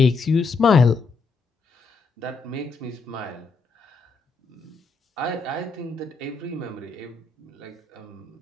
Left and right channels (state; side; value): quieter; right; 4.3 dB